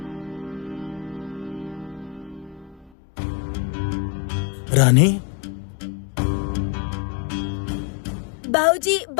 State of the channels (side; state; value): right; drops out; at 2.9 s